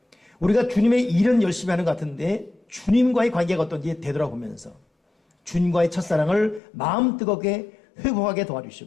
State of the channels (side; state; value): right; drops out; at 6.6 s